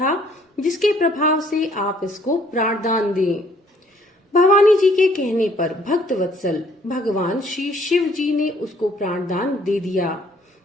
जिसके प्रभाव से आप इसको प्राणदान दें। भवानी जी के कहने पर भक्त वत्सल भगवान श्री शिव जी ने उसको प्राणदान दे दिया।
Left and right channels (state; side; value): normal; both; correlation 0.62